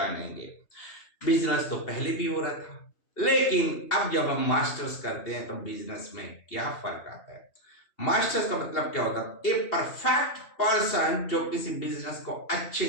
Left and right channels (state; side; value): late; right; 2.7 ms